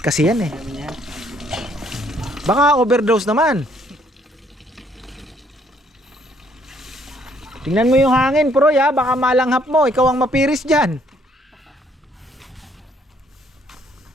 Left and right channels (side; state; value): both; normal; correlation 0.66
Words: kasi yan eh. Baka overdose naman. Tingnan mo yung hangin, Pro, ya. Baka malanghap mo. Ikaw ang mapiris dyan.